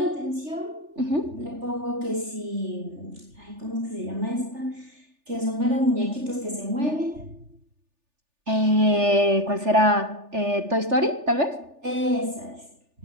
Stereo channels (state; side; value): late; left; 3.4 ms